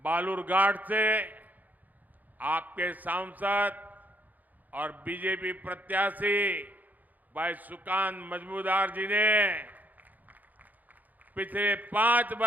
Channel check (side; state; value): left; late; 0.081 ms